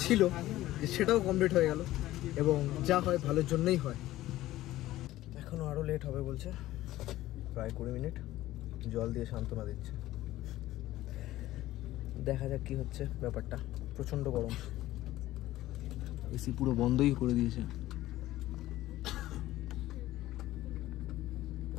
ছিল যে সেটাও কমপ্লিট হয়ে গেল, এবং যা হয় ভালোর জন্যই হয়। এখনও আরও লেট হবে বলছে, প্রায় 20 মিনিট। জল দিয়ে সান্ত্বনা দিচ্ছে, দেখা যাক কি হচ্ছে ব্যাপারটা। প্রচণ্ড গরম, এসি পুরো বন্ধই করে দিয়েছে।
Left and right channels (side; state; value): right; quieter; 15.6 dB